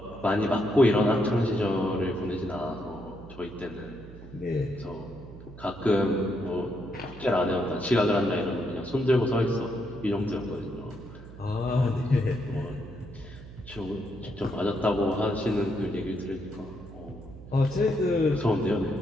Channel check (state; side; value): noise; right; hum, 16 dB below the sound